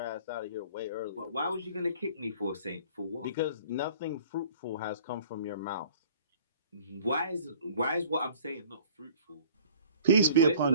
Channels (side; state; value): both; inverted; correlation -0.50